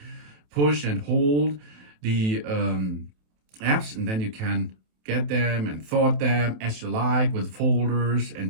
push and hold the apps, and then you can get them and sort them as you like with folders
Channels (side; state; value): left; late; 27 ms